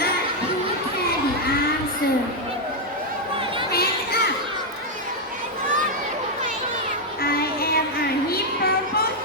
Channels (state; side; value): normal; both; correlation 0.01